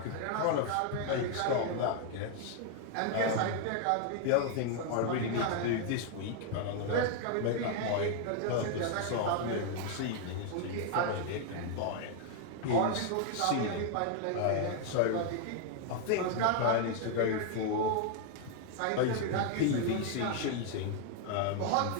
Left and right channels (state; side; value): different; both; correlation 0.00